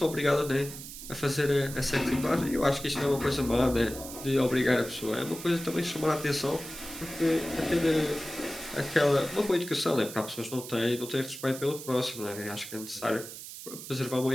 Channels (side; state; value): right; noise; hiss, 12 dB below the sound